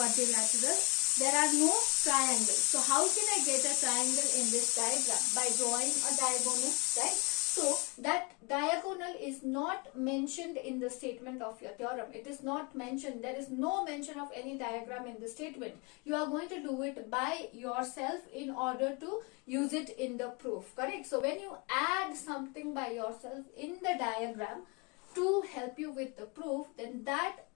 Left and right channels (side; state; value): right; quieter; 28.4 dB